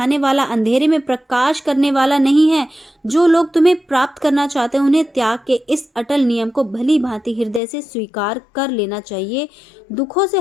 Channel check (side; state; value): right; drops out; at 7.6 s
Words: वाला, अंधेरे में प्रकाश करने वाला नहीं है। जो लोग तुम्हें प्राप्त करना चाहते हैं, उन्हें त्याग के इस अटल नियम को भली भांति हृदय से स्वीकार कर लेना चाहिए। दुखों से